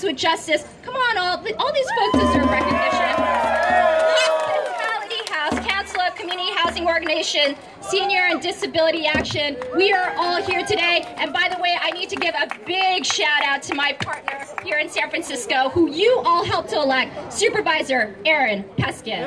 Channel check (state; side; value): identical; both; correlation 1.00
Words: with Justice. Come on, all these folks deserve recognition. Council of Community Housing Organization, Senior and Disability Action. We are all here today. And by the way, I need to give a big shout out to my partner here in San Francisco, who you all helped to elect, Supervisor Aaron